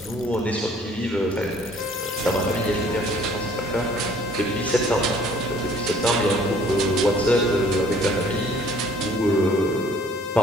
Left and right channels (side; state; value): both; normal; correlation 0.57